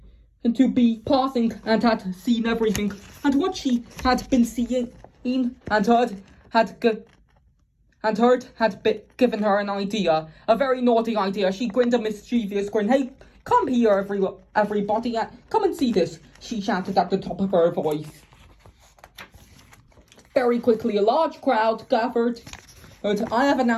to be passing and had seen everything, and what she had been seeing and heard had given her an idea, a very naughty idea. She grinned a mischievous grin. Hey, come here, everybody, come and see this, she shouted at the top of her voice. Very quickly, a large crowd gathered. And I have an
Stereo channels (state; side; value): identical; both; correlation 1.00